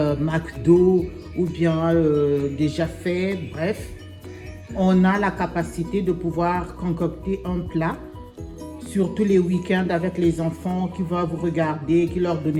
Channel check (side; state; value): both; identical; correlation 1.00